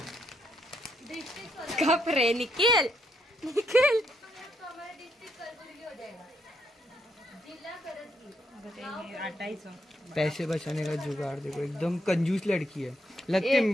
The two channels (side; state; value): both; normal; correlation 0.76